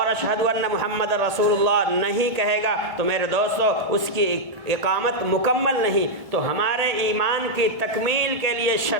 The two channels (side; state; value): left; late; 2.2 ms